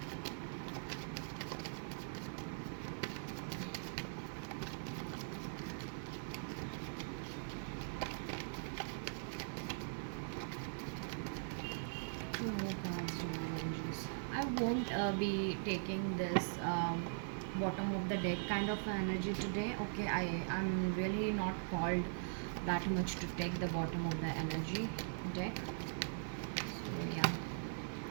Two more cards, divine energies. I won't be taking this bottom of the deck kind of energy today, okay. I'm really not called that much to take the bottom of the energy deck. So yeah.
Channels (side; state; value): left; silent; 50 dB below the other